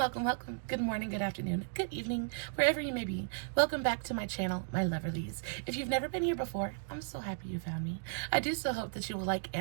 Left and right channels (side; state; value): left; silent; digital silence